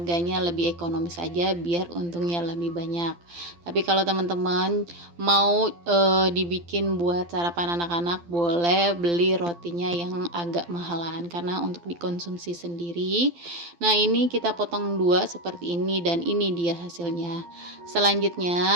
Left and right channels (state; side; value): late; left; 12 ms